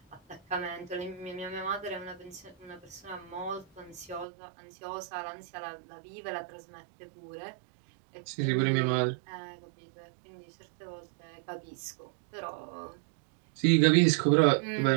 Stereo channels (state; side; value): drops out; left; at 4.2 s